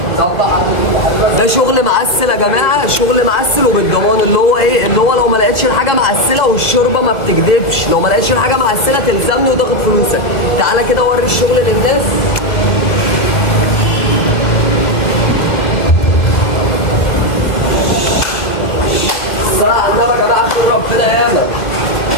ده شغل معسل يا جماعه، شغل معسل وبالضمان، اللي هو ايه؟ اللي هو لو ما لقيتش الحاجه معسله والشوربه ما بتكدبش، لو ما لقيتش الحاجه معسله تلزمني وتاخد فلوسك. تعالى كده وري الشغل للناس. الصلاه على النبي يا جماعه، خير ربنا ياما،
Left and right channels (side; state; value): right; late; 2.0 ms